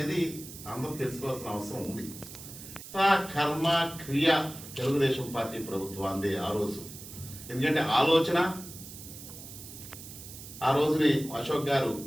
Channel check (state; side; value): noise; right; hiss, 14 dB below the sound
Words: అందరూ తెలుసుకోవాల్సిన అవసరం ఉంది. కర్మ క్రియ తెలుగుదేశం పార్టీ ప్రభుత్వాన్ని ఆ రోజు, ఎందుకంటే ఆలోచన ఆ రోజుని అశోక్ గారు